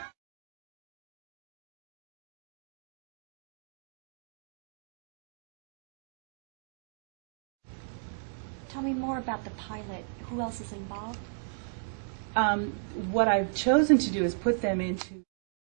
Tell me more about the pilot. Who else is involved? What I've chosen to do is put them into...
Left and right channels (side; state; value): left; silent; digital silence